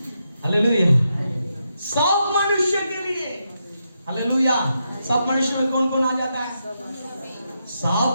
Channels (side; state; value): both; inverted; correlation -0.84